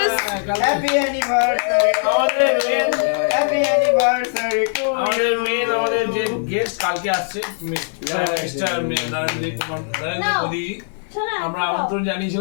Happy anniversary to you. Happy anniversary to you. আমাদের যে গেস্ট কালকে আসছে মিস্টার নরেন্দ্র কুমার মোদী, আমরা আমন্ত্রণ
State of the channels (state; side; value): silent; right; digital silence